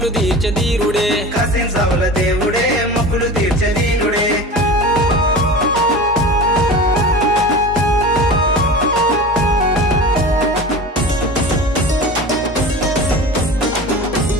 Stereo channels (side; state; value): both; normal; correlation 0.33